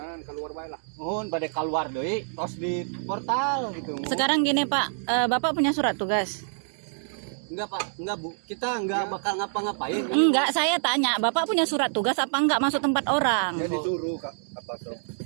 keluar bae lah. Mohon bade keluar deui tos di portal gitu. Mohon. Sekarang gini Pak, Bapak punya surat tugas? Enggak Pak, enggak Bu. Kita enggak bakal ngapa-ngapain. Enggak, saya tanya, Bapak punya surat tugas apa enggak masuk tempat orang? Dia disuruh Kak apa tuh?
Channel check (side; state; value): left; silent; digital silence